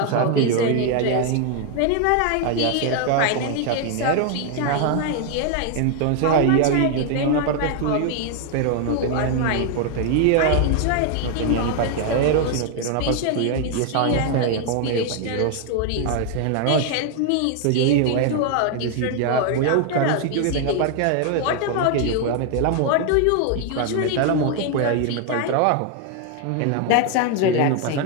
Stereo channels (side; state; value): both; different; correlation 0.01